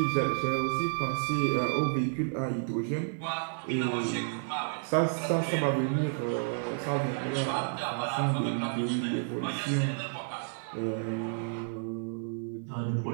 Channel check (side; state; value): left; silent; digital silence